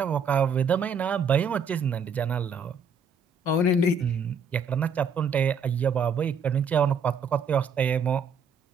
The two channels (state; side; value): quieter; left; 4.7 dB